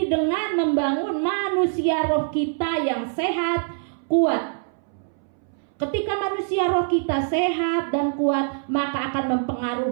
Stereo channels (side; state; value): left; silent; 63 dB below the other